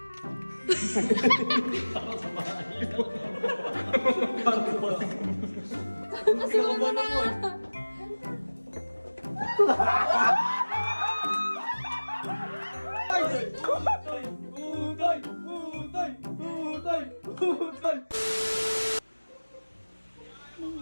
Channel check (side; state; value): both; inverted; correlation -1.00